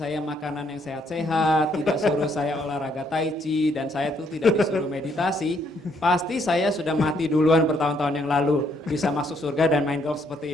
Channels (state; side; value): normal; both; correlation 0.70